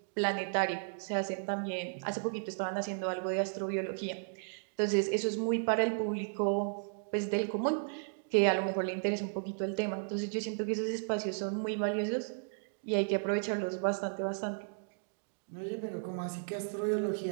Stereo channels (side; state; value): left; silent; digital silence